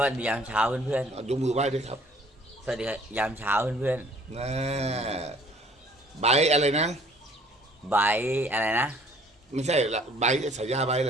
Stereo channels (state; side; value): normal; both; correlation 0.57